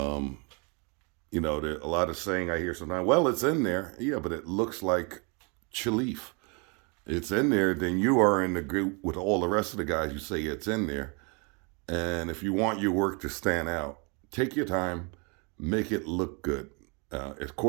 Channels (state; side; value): quieter; left; 33.1 dB